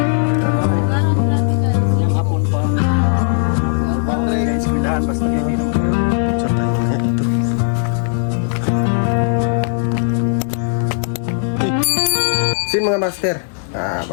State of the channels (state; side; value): silent; right; digital silence